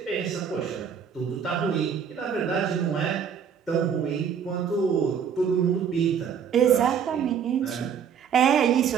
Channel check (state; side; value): quieter; left; 7.5 dB